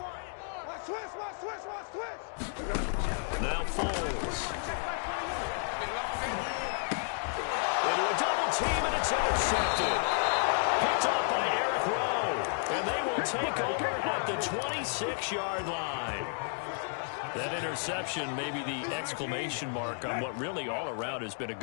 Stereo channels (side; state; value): right; silent; 56 dB below the other